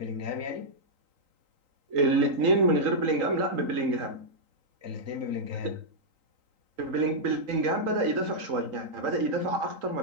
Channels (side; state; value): left; late; 3.8 ms